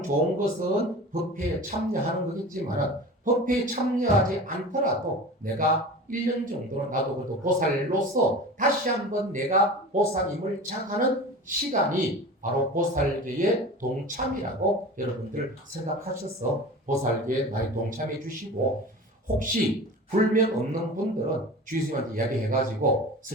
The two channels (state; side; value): normal; both; correlation 0.35